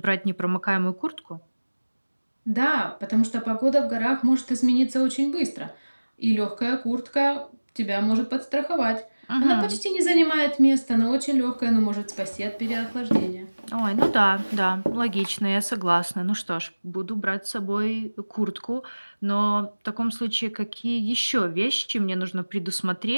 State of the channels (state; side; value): inverted; both; correlation -1.00